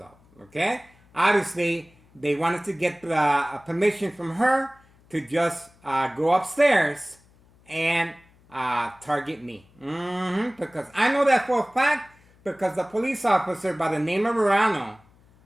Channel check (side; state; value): left; noise; hum, 30 dB below the sound